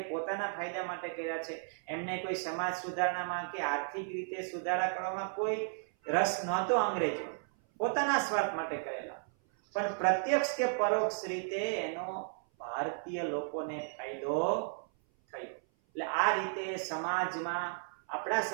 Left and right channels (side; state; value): left; silent; 55 dB below the other